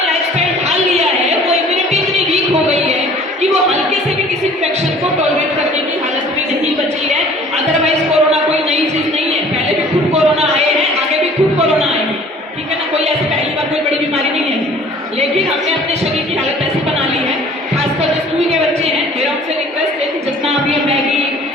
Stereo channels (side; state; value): both; normal; correlation 0.50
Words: लाइफस्टाइल ढाल लिया है, वो इम्यूनिटी इतनी वीक हो गई है कि वो हल्के से भी किसी इन्फेक्शन को टॉलरेट करने की हालत में नहीं बची है। अदरवाइज कोरोना कोई नई चीज नहीं है, पहले भी खूब कोरोना आए हैं, आगे भी खूब कोरोना आएंगे, ठीक है ना। कोई ऐसी पहली बार कोई बड़ी बीमारी नहीं है, लेकिन हमने अपने शरीर की हालत ऐसी बना ली है, खासकर जो स्कूल के बच्चे हैं, मेरा उनसे रिक्वेस्ट है कि जितना आप ये मैगी,